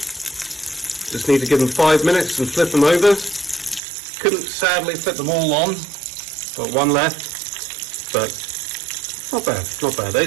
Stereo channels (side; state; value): left; drops out; at 3.8 s